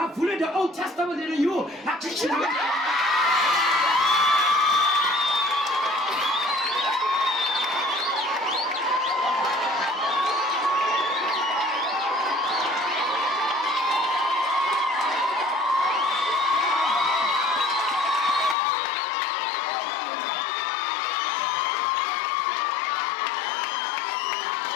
the Old Testament in you. Athi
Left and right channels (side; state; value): right; drops out; at 18.6 s